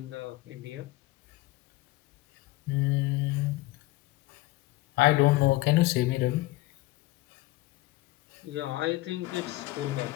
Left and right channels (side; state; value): right; quieter; 19.2 dB